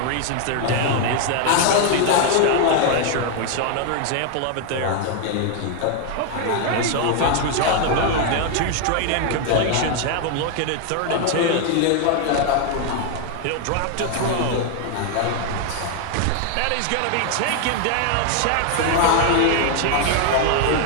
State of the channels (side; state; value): both; different; correlation 0.00